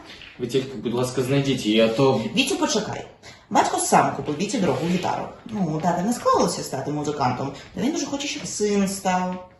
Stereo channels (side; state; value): both; identical; correlation 1.00